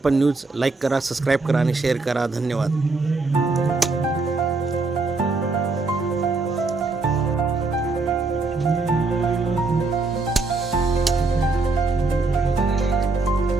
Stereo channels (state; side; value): quieter; left; 3.7 dB